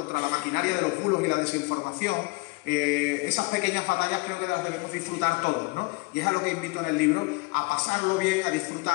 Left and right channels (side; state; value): right; quieter; 27.6 dB